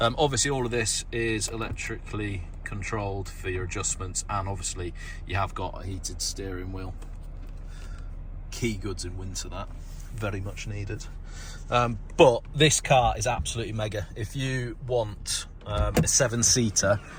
all of this is electrically controlled for your adjustments, and obviously you have got a heated steering wheel. Key goods in winter, that. Very much needed. But this car is absolutely mega. If you want a 7-seater,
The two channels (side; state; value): both; identical; correlation 1.00